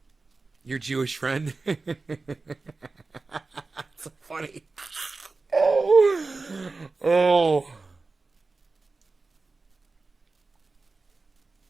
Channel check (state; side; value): quieter; left; 3.8 dB